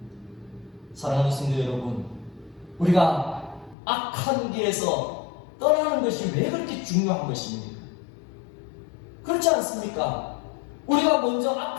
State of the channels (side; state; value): right; drops out; at 3.8 s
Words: 사랑하는 성도 여러분, 우리가 악한 길에서 떠나는 것이 왜 그렇게 중요한 것입니까? 그렇지 않습니까? 우리가 먼저